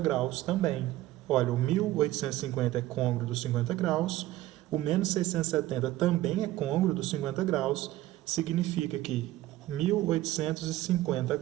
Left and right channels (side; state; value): left; quieter; 15.7 dB